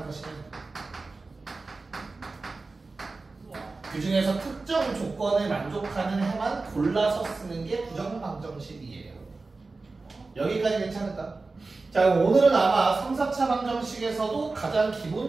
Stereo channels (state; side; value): quieter; left; 3.7 dB